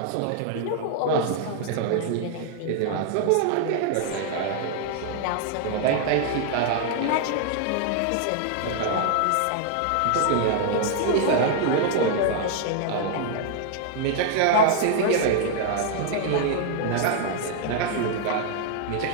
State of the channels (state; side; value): different; both; correlation 0.00